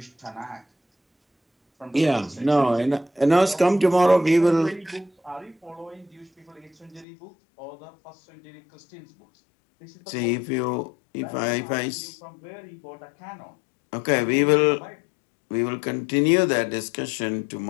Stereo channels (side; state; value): right; drops out; at 7.1 s